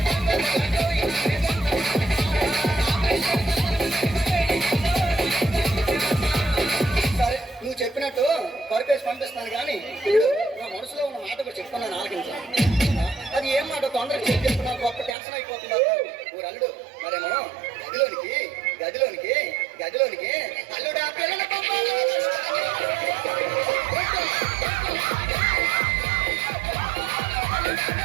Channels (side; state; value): left; drops out; at 15.2 s